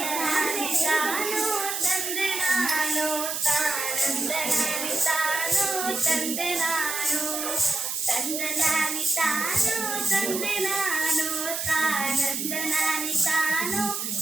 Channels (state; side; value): noise; right; hiss, 3 dB below the sound